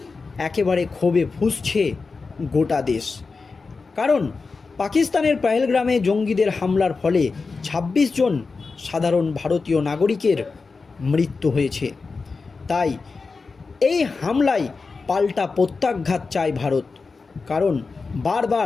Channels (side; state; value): right; quieter; 4.4 dB